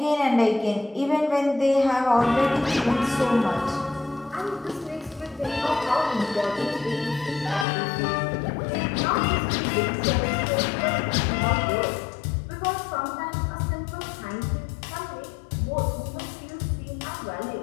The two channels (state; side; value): drops out; right; at 7.7 s